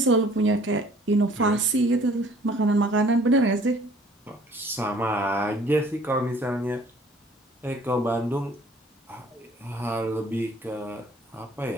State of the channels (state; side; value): normal; both; correlation 0.55